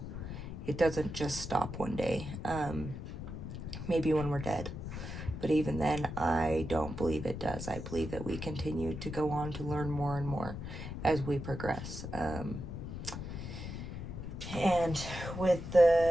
It doesn't just stop one day. Maybe when we're dead. But even then, I don't believe it does. I believe that we continue to go on to learn more and more as we progress. And with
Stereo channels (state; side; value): noise; left; rumble, 7 dB below the sound